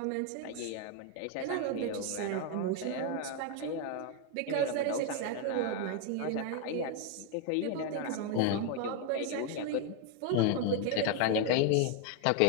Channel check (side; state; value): both; different; correlation 0.01